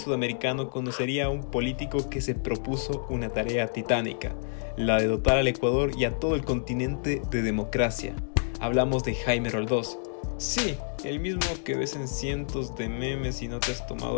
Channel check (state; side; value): silent; right; digital silence